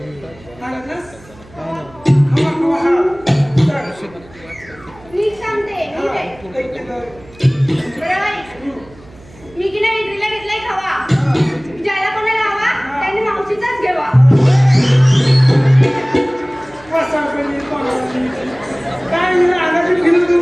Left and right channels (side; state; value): right; noise; hum, 24 dB below the sound